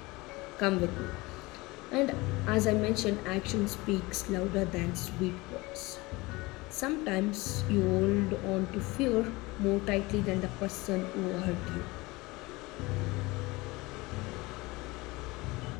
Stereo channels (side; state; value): right; quieter; 22.5 dB